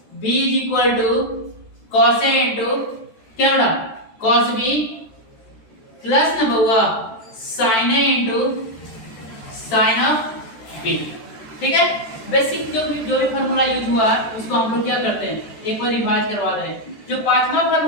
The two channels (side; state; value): right; late; 13 ms